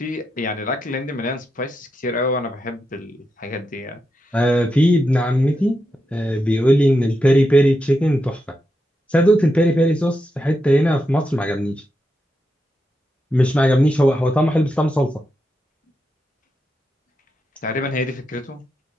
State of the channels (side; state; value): both; normal; correlation 0.86